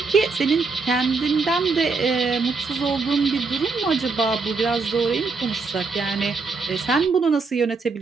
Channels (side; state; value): left; quieter; 4.3 dB